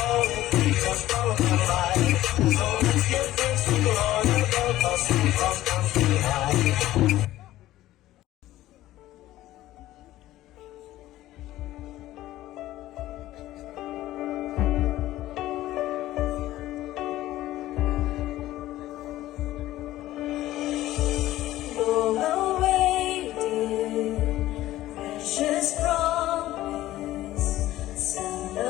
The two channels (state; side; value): quieter; right; 15.1 dB